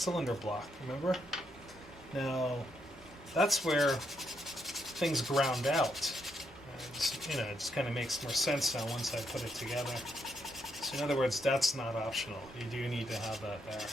block, remember? Now, that's where things ground out. You know, it just kind of makes more sense now once I put it together. So in other words, that's not optional. You do need to have that there.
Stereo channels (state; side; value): normal; both; correlation 0.78